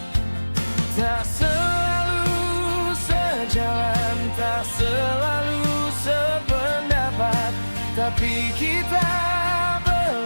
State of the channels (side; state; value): both; inverted; correlation -1.00